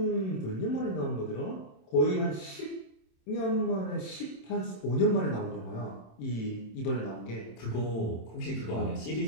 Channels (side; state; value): right; late; 27 ms